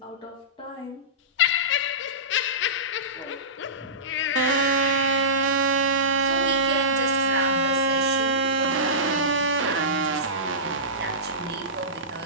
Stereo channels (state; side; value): normal; both; correlation -0.20